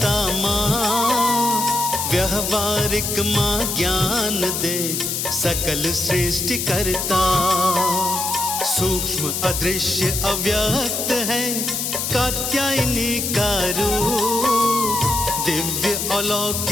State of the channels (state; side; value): noise; left; hiss, 1 dB below the sound